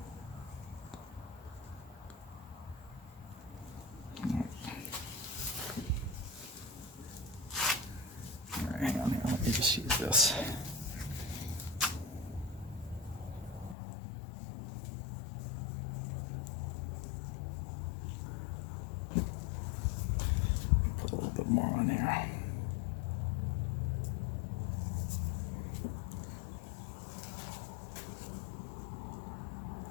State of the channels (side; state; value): right; drops out; at 13.8 s